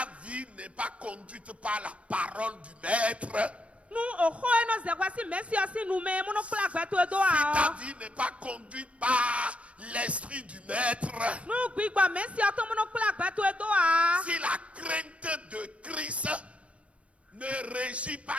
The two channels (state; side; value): late; left; 0.062 ms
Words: vie n'est pas conduite par la parole du Maître, si ta vie n'est pas conduite par l'esprit du Maître, si la crainte de Christ ne régit pas